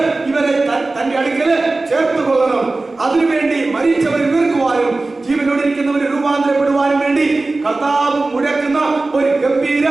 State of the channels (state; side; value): quieter; left; 3.3 dB